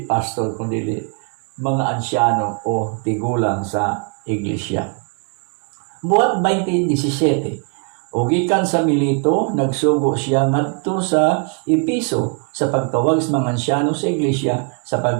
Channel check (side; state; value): left; quieter; 37.9 dB